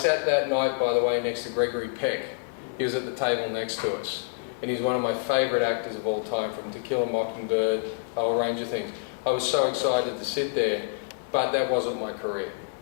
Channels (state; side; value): silent; right; 60 dB below the other